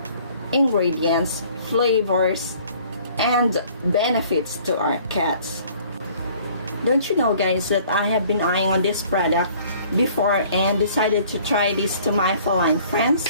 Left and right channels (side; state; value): both; inverted; correlation -0.55